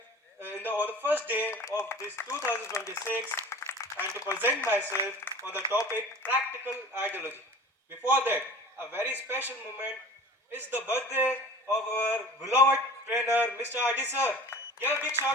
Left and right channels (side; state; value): both; normal; correlation 0.40